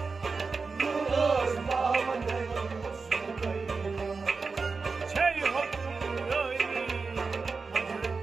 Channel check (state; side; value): quieter; left; 4.5 dB